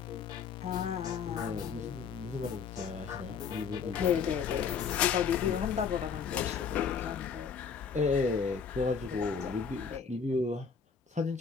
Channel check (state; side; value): quieter; right; 6.2 dB